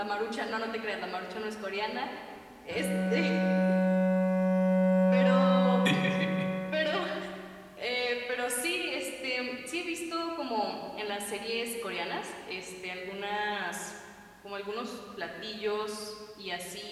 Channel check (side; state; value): both; identical; correlation 1.00